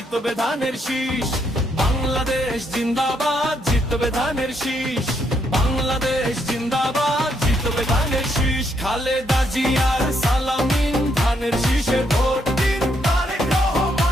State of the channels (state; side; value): normal; both; correlation 0.75